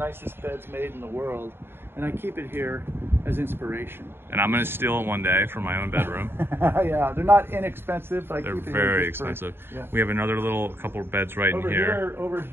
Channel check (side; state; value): left; late; 0.11 ms